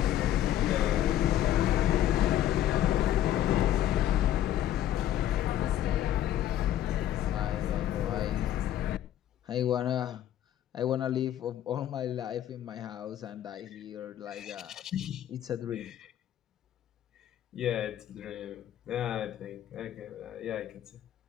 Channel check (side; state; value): right; quieter; 11.8 dB